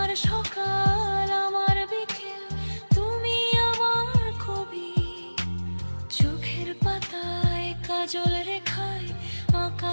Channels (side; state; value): both; inverted; correlation -1.00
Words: সকাল আমার বিকেল তুমি আমার কবি। চোখের পাতায় কাজল রেখায়